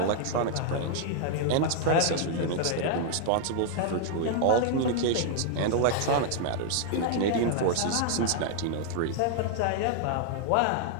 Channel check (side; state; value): both; different; correlation -0.01